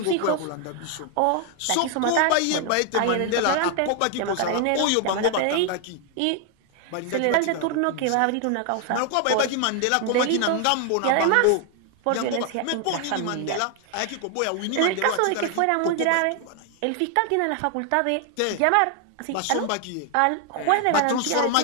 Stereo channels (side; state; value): both; different; correlation 0.00